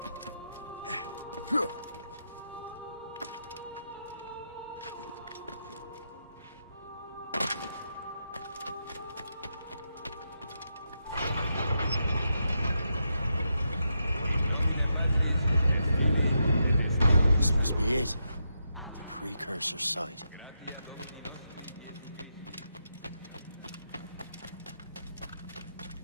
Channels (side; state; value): both; inverted; correlation -0.84